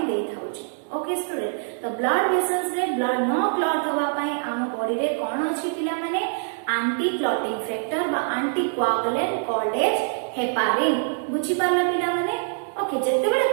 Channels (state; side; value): silent; left; digital silence